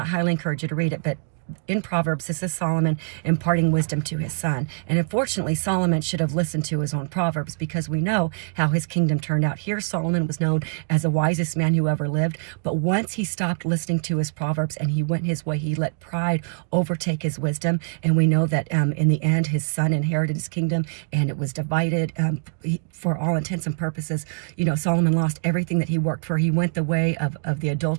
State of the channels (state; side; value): silent; left; digital silence